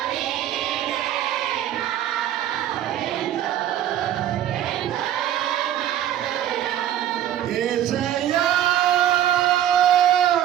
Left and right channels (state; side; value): quieter; left; 11.5 dB